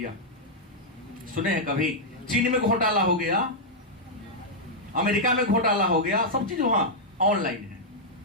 सुने हैं कभी? चीन में घोटाला हो गया, अमेरिका में घोटाला हो गया, सब चीज वहां ऑनलाइन है।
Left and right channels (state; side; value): normal; both; correlation -0.06